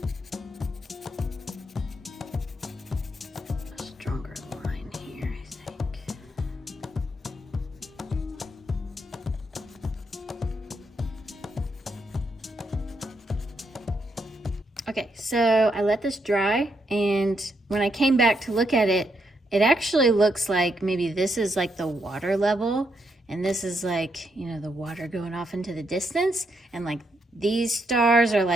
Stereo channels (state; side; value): normal; both; correlation 0.79